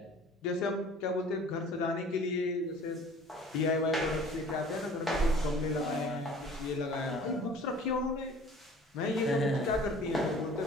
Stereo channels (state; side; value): normal; both; correlation 0.48